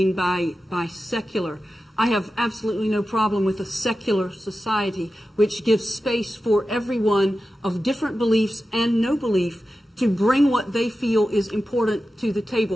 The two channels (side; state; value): both; normal; correlation 0.93